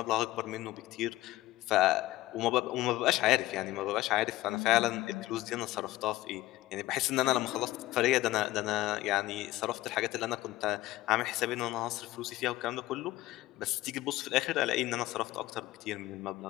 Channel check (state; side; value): quieter; right; 17.0 dB